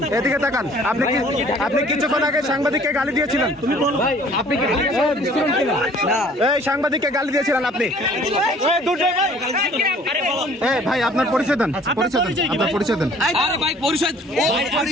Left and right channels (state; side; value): normal; both; correlation 0.54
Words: এদিকে তাকান। আপনি কিছুক্ষণ আগে সাংবাদিককে গালি দিয়েছিলেন। এই সাংবাদিককে গালি দিয়েছিলেন আপনি। ভাই আপনার পরিচয় দেন। আপনার পরিচয় দেন।